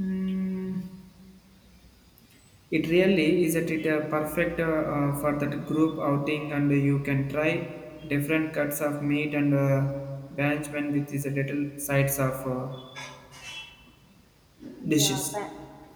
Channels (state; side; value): identical; both; correlation 1.00